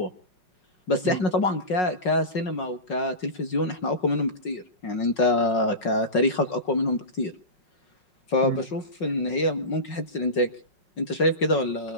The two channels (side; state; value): right; late; 5.5 ms